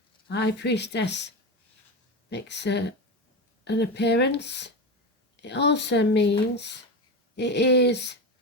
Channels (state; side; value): normal; both; correlation 0.19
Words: High Priestess makes an appearance. It also means it is